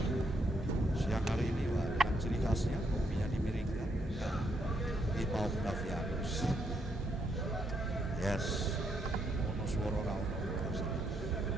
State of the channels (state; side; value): normal; both; correlation 0.76